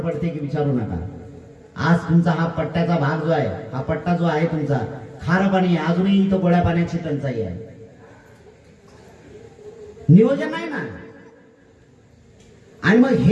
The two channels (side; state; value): both; identical; correlation 1.00